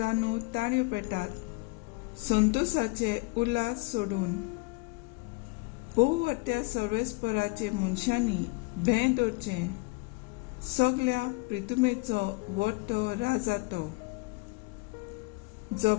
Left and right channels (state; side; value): quieter; right; 26.6 dB